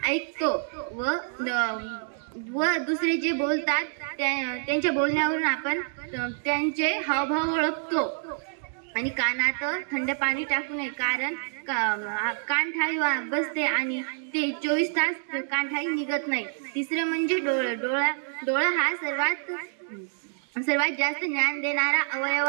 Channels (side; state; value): left; silent; digital silence